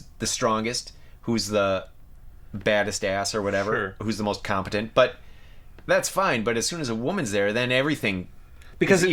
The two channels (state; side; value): identical; both; correlation 1.00